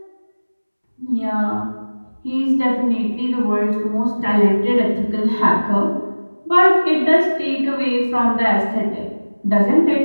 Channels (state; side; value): inverted; both; correlation -1.00